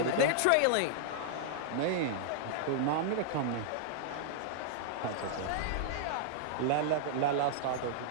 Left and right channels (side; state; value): both; different; correlation -0.01